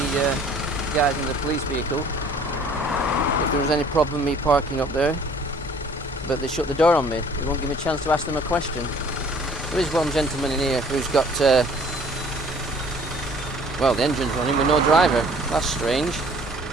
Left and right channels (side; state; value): both; normal; correlation 0.54